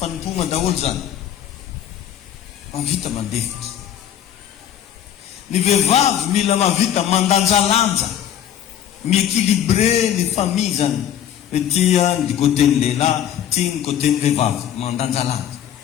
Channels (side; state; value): right; quieter; 10.3 dB